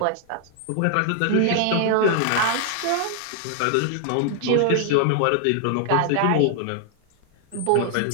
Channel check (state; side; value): different; both; correlation 0.00